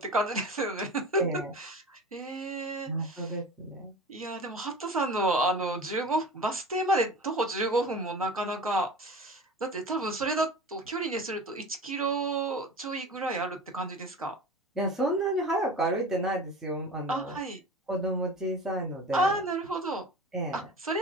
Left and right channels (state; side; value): normal; both; correlation 0.35